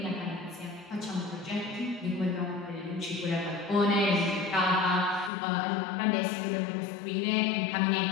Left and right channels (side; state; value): right; drops out; at 5.3 s